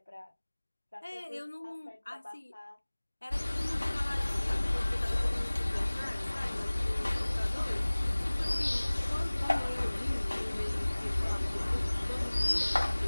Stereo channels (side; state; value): both; inverted; correlation -1.00